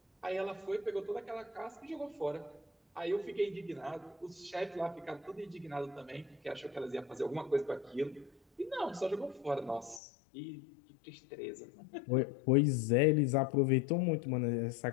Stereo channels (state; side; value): drops out; right; at 10.0 s